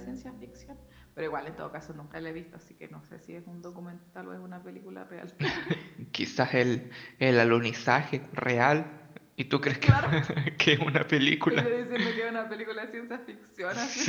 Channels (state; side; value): identical; both; correlation 1.00